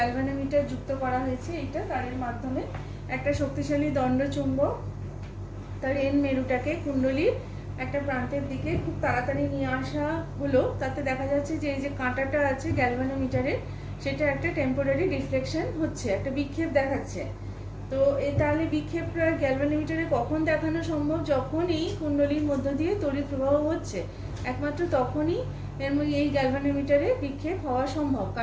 যুক্ত করা হয়েছে। এইটা তারের মাধ্যমে একটা শক্তিশালী দণ্ড চুম্বক তার এন মেরুটাকে কুণ্ডলীর একটা প্রান্তের দিকে খুব তাড়াতাড়ি নিয়ে আসা হলো। তাতে দেখা যাচ্ছে যে এই যে কাঁটাটা আছে গ্যালভানোমিটারের, সেটা একটা টেম্পোরারি রিফ্লেকশন হচ্ছে, একটা বিক্ষেপ দেখাচ্ছে। তো তাহলে বিক্ষেপটা গ্যালভানোমিটারে কখন দেখানো সম্ভব? যখন এই কুণ্ডলীর মধ্য দিয়ে তড়িৎ প্রবাহ হচ্ছে, একমাত্র তখনই এই গ্যালভানোমিটারে বিক্ষেপ হওয়া সম্ভব,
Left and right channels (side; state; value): both; identical; correlation 1.00